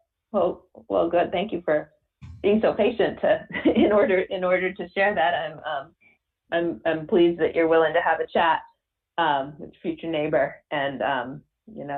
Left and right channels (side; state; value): both; identical; correlation 1.00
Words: Well, good. Thank you for being so patient in order to share that. I'm pleased that you're willing to have a chat with your future neighbor and